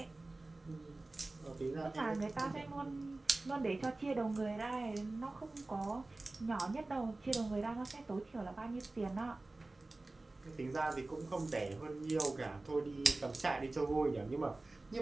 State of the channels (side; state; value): left; quieter; 3.0 dB